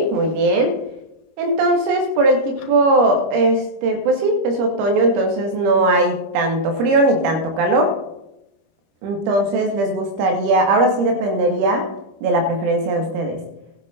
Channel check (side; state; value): left; late; 25 ms